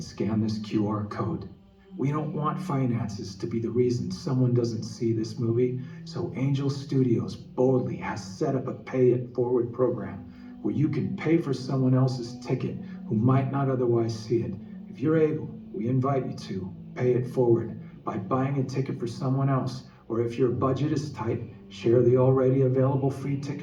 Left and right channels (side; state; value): both; identical; correlation 1.00